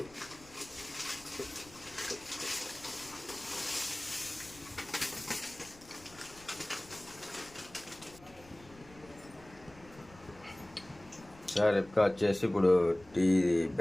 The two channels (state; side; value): noise; left; rumble, 22 dB below the sound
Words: సార్ ఎప్పుడు వచ్చేసి ఇప్పుడు టీ